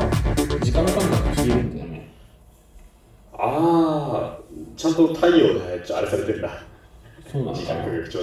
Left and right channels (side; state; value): both; identical; correlation 1.00